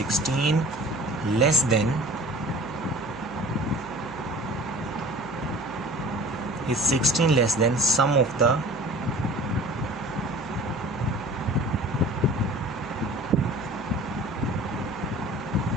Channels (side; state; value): right; noise; hum, 19 dB below the sound